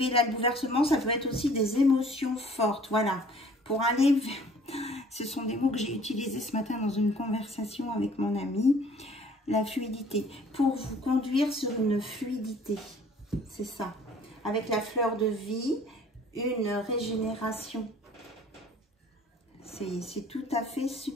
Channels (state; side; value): normal; both; correlation 0.53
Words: là le bouleversement, ça peut être aussi des émotions fortes. Voilà, pour aller vers... Ce sont des mots que j'ai utilisés ce matin dans une conversation avec mon ami. La fluidité. Pour vous conduire sur une fluidité. C'est ça. Avec la fleur de vie, une régénération. C'est tout à fait